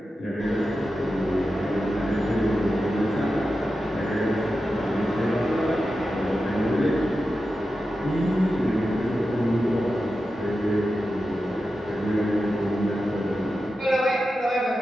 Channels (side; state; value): both; normal; correlation 0.91